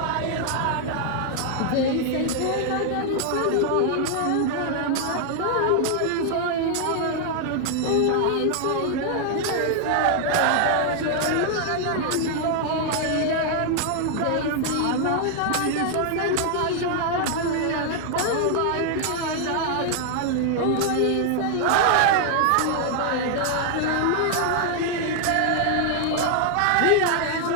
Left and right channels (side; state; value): both; different; correlation 0.00